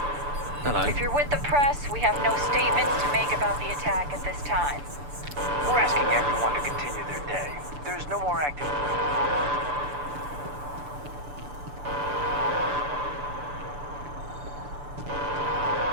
Hello. If you're with the press, we have no statements to make about the attack at this time. We're asking everyone to continue their day. There's no more activity.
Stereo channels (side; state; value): left; late; 6.9 ms